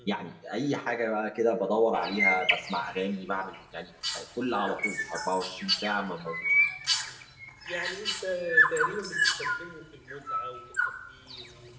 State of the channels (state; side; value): identical; both; correlation 1.00